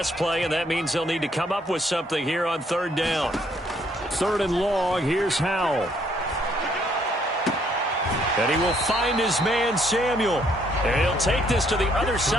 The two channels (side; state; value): both; normal; correlation 0.68